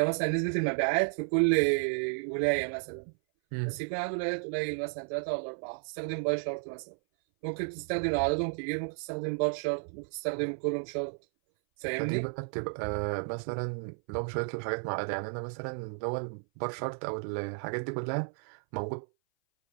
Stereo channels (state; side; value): silent; left; 56 dB below the other